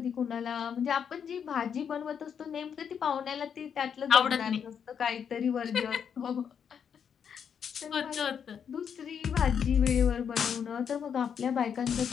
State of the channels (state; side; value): quieter; right; 7.6 dB